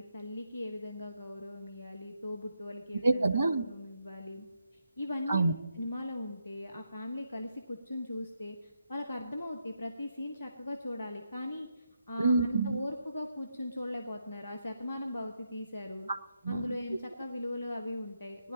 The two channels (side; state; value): both; inverted; correlation -0.82